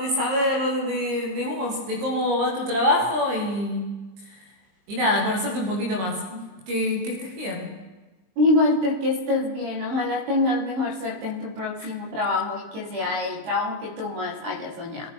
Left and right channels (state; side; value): late; left; 22 ms